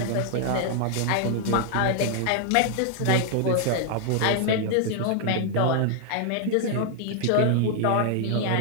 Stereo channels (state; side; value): different; both; correlation 0.00